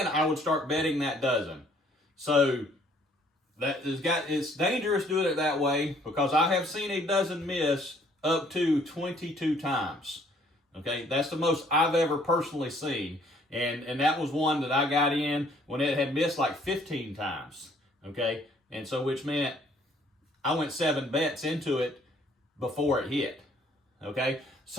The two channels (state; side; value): normal; both; correlation 0.62